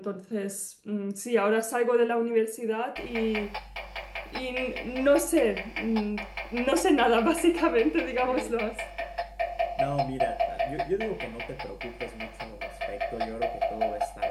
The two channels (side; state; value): both; identical; correlation 1.00